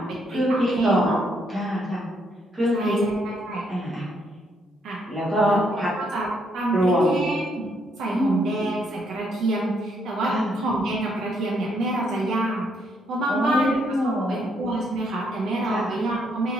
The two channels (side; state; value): both; normal; correlation 0.73